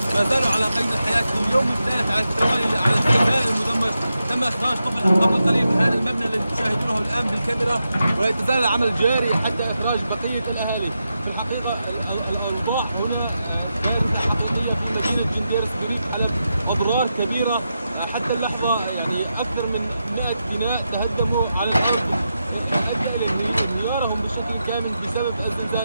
ما زالوا على قيد الحياة في اليوم الثالث على التوالي على السكان المدمر. تم إخراج طفل قبل قليل من هذا المبنى الذي تشاهدونه الآن بالكاميرا، ولا يتزال العمل جاري حتى إخراج بقية الأهالي. في الحقيقة الأوضاع هنا كانت حقيقية في مدينة جنديرس بريف حلب، أضرار كبيرة حتى اللحظة، يعني أكثر من 100 بناء تهدموا على الأرض، أدى إلى انهيارهم بشكل كامل بسبب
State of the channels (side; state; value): both; inverted; correlation -0.88